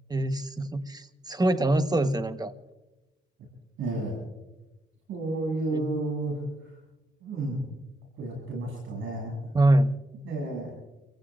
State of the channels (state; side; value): normal; both; correlation 0.83